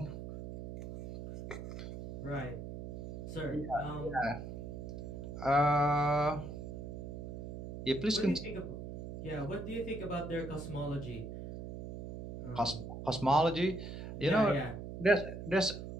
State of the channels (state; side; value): noise; right; hum, 8 dB below the sound